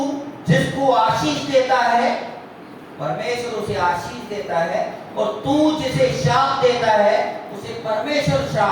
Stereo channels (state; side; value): identical; both; correlation 1.00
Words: जिसको आशीष देता है, परमेश्वर उसे आशीष देता है, और तू जिसे श्राप देता है उसे परमेश्वर